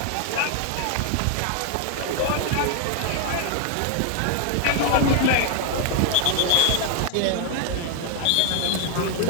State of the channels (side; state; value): both; different; correlation 0.00